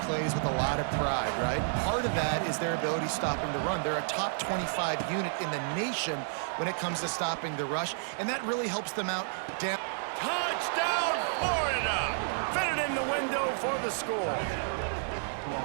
plays with a lot of pride, right? Part of that is their ability stopping the run. They're a top 25 unit in the nation when it comes to stopping the rush, and that really helps them out down. Touchdown, Florida! Fitted in the window for the score.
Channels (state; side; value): silent; left; 57 dB below the other